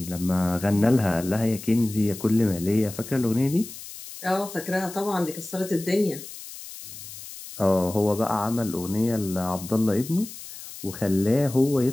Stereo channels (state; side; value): noise; left; hiss, 13 dB below the sound